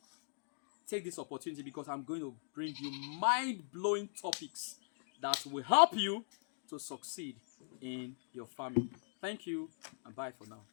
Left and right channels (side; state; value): right; silent; digital silence